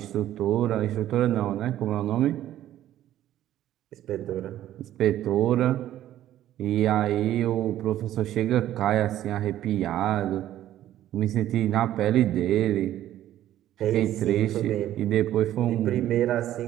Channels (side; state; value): left; quieter; 12.7 dB